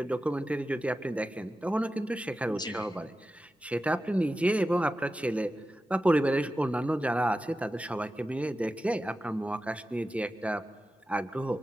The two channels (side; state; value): both; normal; correlation 0.93